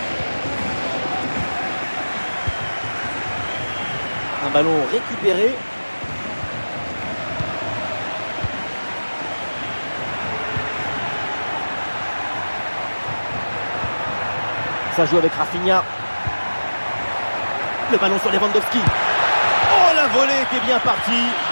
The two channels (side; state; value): both; inverted; correlation -1.00